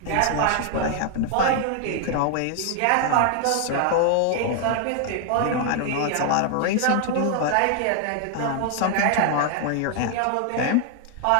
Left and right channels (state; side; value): different; both; correlation 0.00